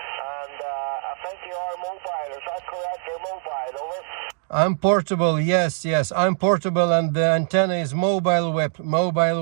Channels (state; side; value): silent; left; digital silence